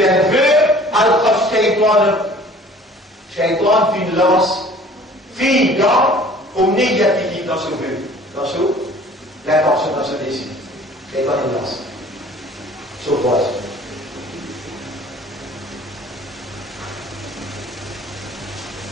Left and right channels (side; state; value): both; normal; correlation 0.50